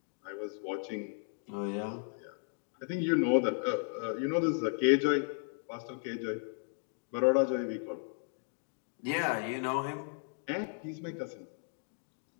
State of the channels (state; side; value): silent; right; 54 dB below the other